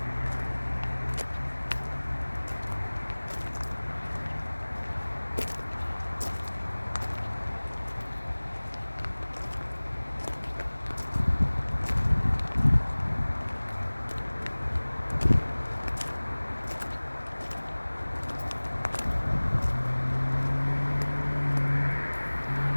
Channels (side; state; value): both; inverted; correlation -1.00